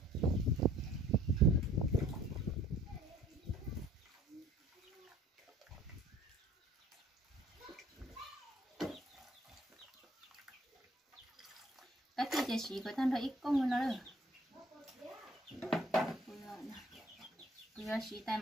cái thi chỉ chỉ có thân thôi ít công nó nữa bây giờ chỉ tay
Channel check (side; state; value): both; normal; correlation 0.57